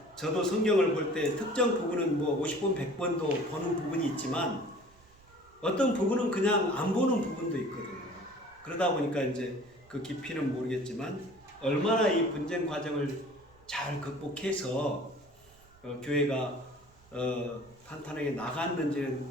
저도 성경을 볼 때 특정 부분은 뭐 50번, 100번도 보는 부분이 있지만 어떤 부분은 그냥 안 보는 부분도 있거든요. 그러다 보니까 이제 그 깊이는 모르겠지만 얼마나 이 분쟁 과정을 잘 극복해서 교회가 탄탄하게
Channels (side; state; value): right; noise; rumble, 28 dB below the sound